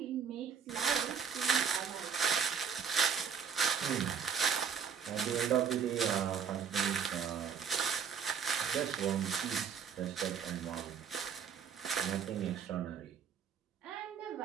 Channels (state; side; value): quieter; left; 7.0 dB